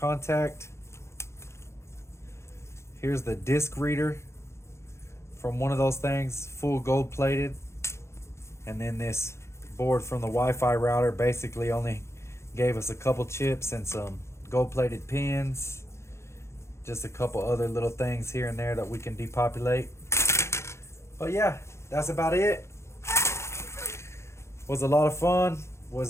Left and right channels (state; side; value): late; right; 0.13 ms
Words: Here's the disc reader from one of those things, full gold plated. And then this board from the Wi-Fi router basically only gave us a couple chips and some gold plated pins. Just a couple other little things here and there that we can depopulate. But yeah, that's about it. Was a lot of fun.